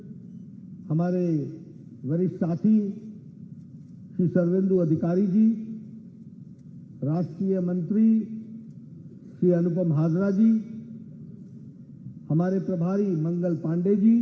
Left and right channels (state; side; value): identical; both; correlation 1.00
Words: हमारे वरिष्ठ साथी श्री सर्वेंदु अधिकारी जी, राष्ट्रीय मंत्री श्री अनुपम हाजरा जी, हमारे प्रभारी मंगल पांडे जी,